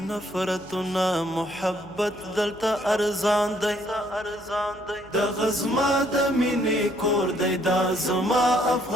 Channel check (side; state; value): left; noise; hum, 24 dB below the sound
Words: نفرتونه، محبت دلته ارزان دی. دغه زما د مینې کور دی، دا زما